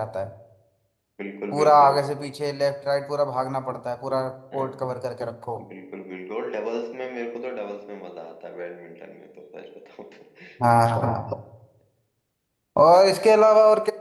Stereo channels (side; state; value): both; identical; correlation 1.00